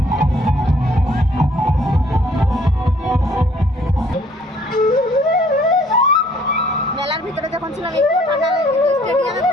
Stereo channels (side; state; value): both; normal; correlation 0.60